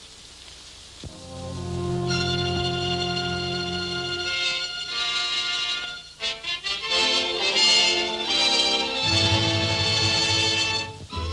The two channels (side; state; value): both; identical; correlation 1.00